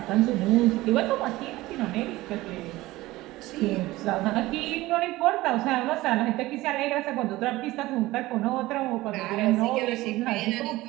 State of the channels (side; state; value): left; quieter; 18.4 dB